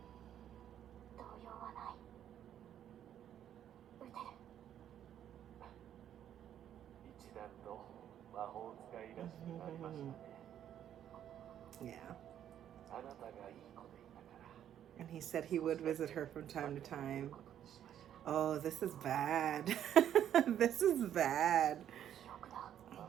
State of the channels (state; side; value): quieter; left; 10.3 dB